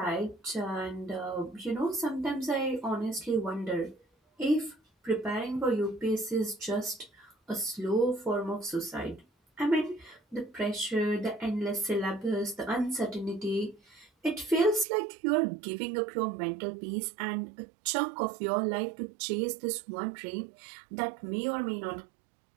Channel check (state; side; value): drops out; left; at 14.9 s